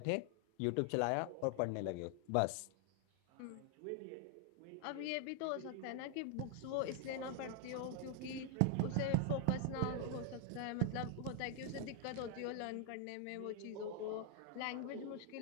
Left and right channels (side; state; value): both; different; correlation 0.00